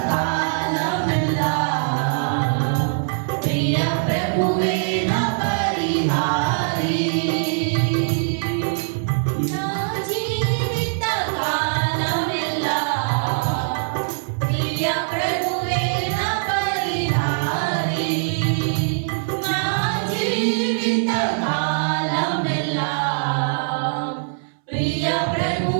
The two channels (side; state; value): left; silent; 64 dB below the other